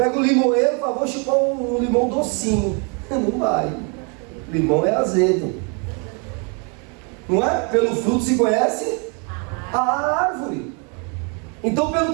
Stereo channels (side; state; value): left; quieter; 35.7 dB